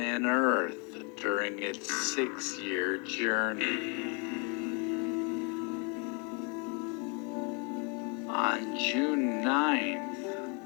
Earth during its 6-year journey. On June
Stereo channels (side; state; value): right; quieter; 33.3 dB